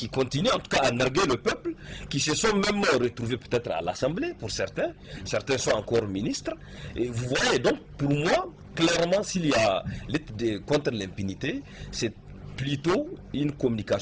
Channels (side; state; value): both; identical; correlation 1.00